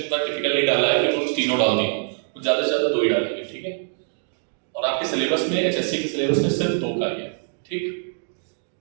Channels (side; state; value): left; silent; 63 dB below the other